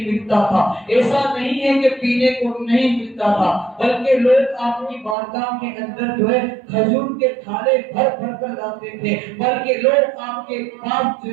ملتا تھا، ایسا نہیں ہے کہ پینے کو نہیں ملتا تھا، بلکہ لوگ آپ کی بارگاہ کے اندر جو ہے کھجور کے تھالے بھر کر لاتے تھے، بلکہ لوگ آپ کے پاس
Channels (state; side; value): drops out; left; at 5.2 s